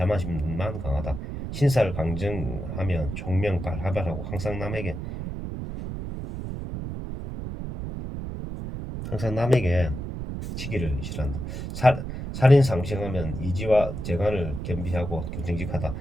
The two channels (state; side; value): noise; right; rumble, 6 dB below the sound